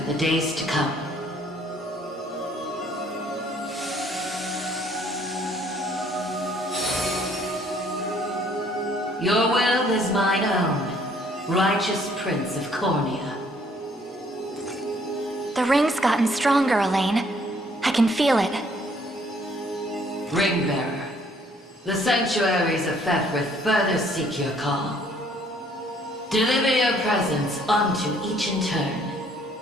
the days to come. Your will is mine own, righteous Prince of Cornea. The ring's gotten stronger, Elaine. I can feel it. Ringbearer, the sanctuaries of Fefrith further seek your call. Deliver your presence unto each in turn,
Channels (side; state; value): both; normal; correlation 0.62